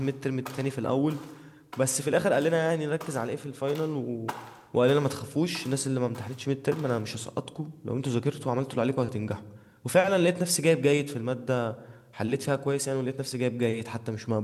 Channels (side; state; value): both; identical; correlation 1.00